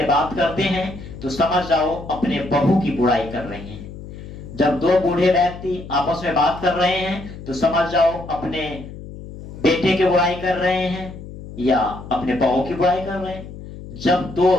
बात करते हैं तो समझ जाओ अपने बहू की बुराई कर रहे हैं। जब दो बूढ़े व्यक्ति आपस में बात कर रहे हैं तो समझ जाओ अपने बेटे की बुराई कर रहे हैं या अपने बहू की बुराई कर रहे हैं। जब दो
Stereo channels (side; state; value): left; noise; hum, 13 dB below the sound